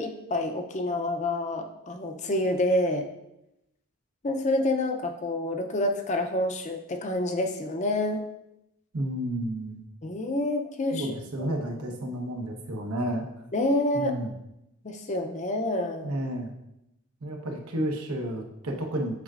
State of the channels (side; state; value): both; normal; correlation 0.34